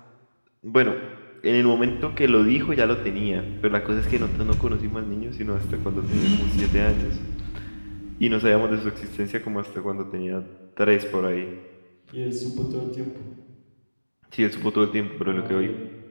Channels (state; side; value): inverted; both; correlation -1.00